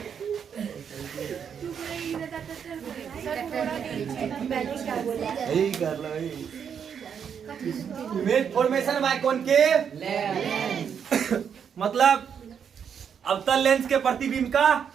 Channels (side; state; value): left; quieter; 7.6 dB